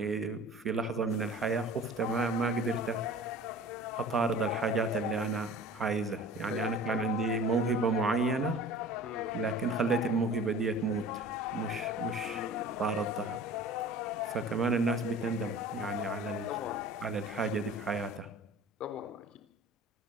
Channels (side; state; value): both; normal; correlation 0.43